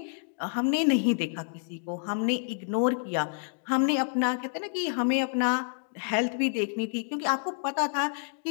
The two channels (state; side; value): silent; right; digital silence